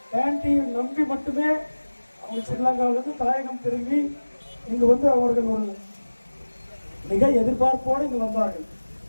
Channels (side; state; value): both; inverted; correlation -1.00